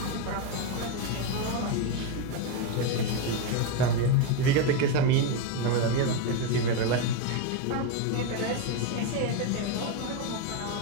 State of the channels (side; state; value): both; different; correlation 0.03